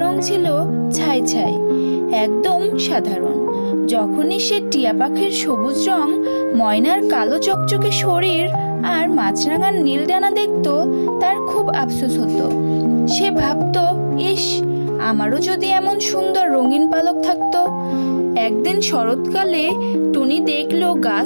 রং ছিল ছাই ছাই, একদম সাধারণ। যখনই সে টিয়া পাখির সবুজ রং, ময়নার কালো চকচকে শরীর আর মাছরাঙার নীল ডানা দেখত, তার খুব আফসোস হতো। সে ভাবতো, ইস, আমারও যদি এমন সুন্দর রঙিন পালক থাকতো। একদিন শরৎকালে টুনি দেখলো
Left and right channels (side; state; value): both; inverted; correlation -1.00